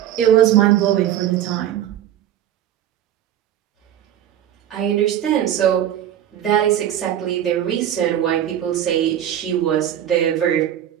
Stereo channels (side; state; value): left; quieter; 11.0 dB